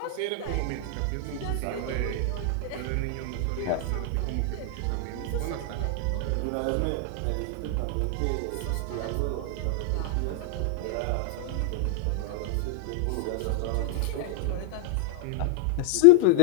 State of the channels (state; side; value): different; both; correlation 0.00